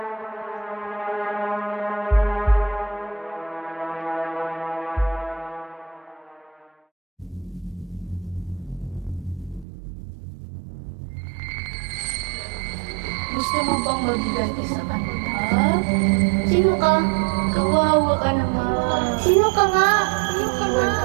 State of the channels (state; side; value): drops out; left; at 9.7 s